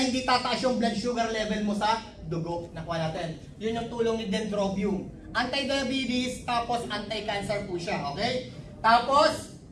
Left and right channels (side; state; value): both; identical; correlation 1.00